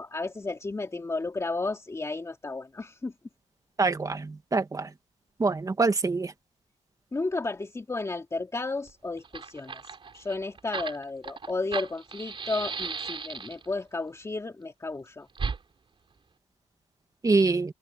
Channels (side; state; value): both; normal; correlation 0.72